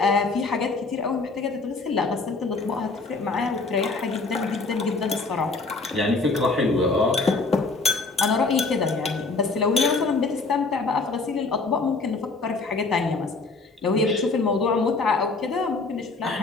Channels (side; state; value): right; quieter; 3.8 dB